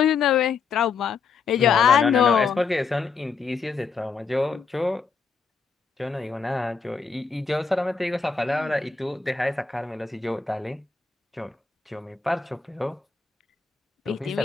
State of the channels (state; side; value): quieter; right; 5.4 dB